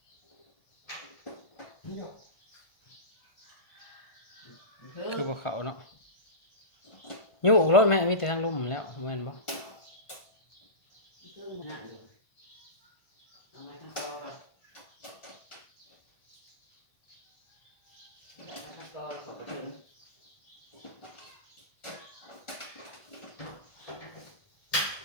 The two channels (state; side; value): late; right; 1.5 ms